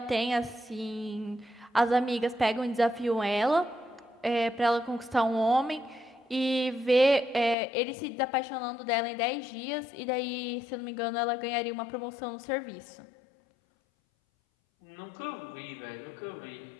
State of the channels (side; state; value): right; drops out; at 7.6 s